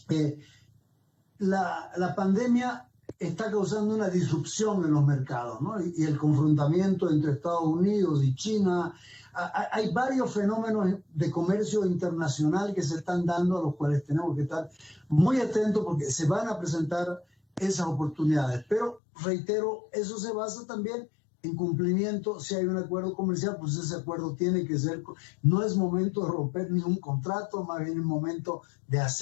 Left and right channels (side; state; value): right; drops out; at 19.0 s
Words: la pandemia está causando una disrupción en los mercados, ¿no? Y el confrontamiento entre Estados Unidos y China. Hay varios fenómenos de comercio internacional que se están dando, a los cuales tenemos que estar muy atentos porque se van a presentar esas oportunidades. Pero, reitero, eso se basa también en cumplimiento. Si hay un acuerdo comercial, pues ese acuerdo tiene que ser, no es momento de romper ningún contrato, más bien es momento de